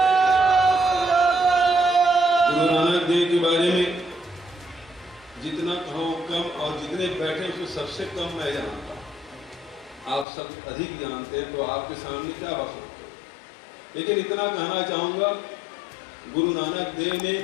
गुरु नानक देव के बारे में जितना कहो कम, और जितने बैठे उसको सबसे कम मैं जानता हूं। आप सब अधिक जानते हैं, तो आपके सामने क्या बात सकते हो। लेकिन इतना कहना चाहूंगा, गुरु नानक देव ने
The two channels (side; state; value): right; drops out; at 10.2 s